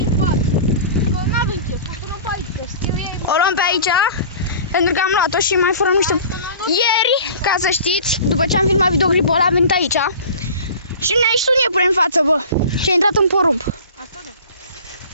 față. Că n-avem chef, o să luăm pe aici, să știu ei. O luăm pe aici, pentru că am luat-o și mai furăm niște... Ieri, ca să știți, după ce am filmat videoclipul ăla, am venit aici și ne-a ieșit un iepure în față, bă, și a intrat în porumb. Asta da.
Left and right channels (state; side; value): inverted; both; correlation -0.41